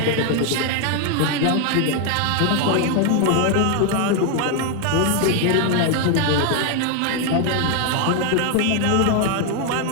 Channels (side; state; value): both; different; correlation 0.01